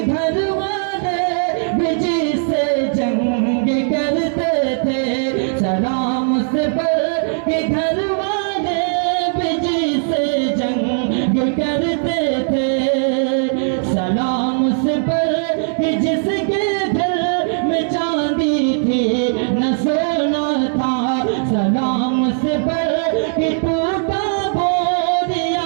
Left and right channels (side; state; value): left; silent; digital silence